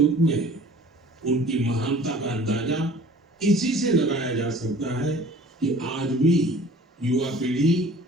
में उनकी महानता का अंदाजा इसी से लगाया जा सकता है कि आज भी युवा पीढ़ी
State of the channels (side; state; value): both; normal; correlation 0.48